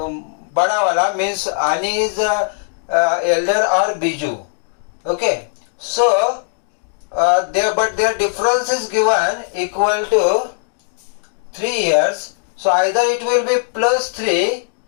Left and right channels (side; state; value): right; silent; digital silence